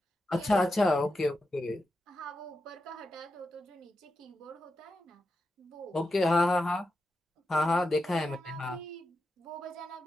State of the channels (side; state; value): both; normal; correlation 0.88